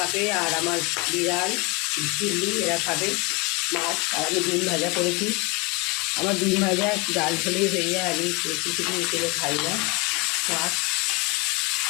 আর আমার বিড়াল চিল্লি এরা খাবে মাছ। আর আমি ডিম ভাজা করেছি। আমার ডিম ভাজা ডাল হলেই হয়ে যায়, আমি কিছু কিছু খাই না। মাছ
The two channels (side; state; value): right; quieter; 27.9 dB